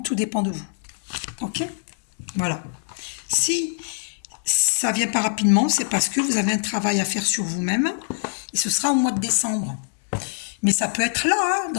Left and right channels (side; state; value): right; silent; digital silence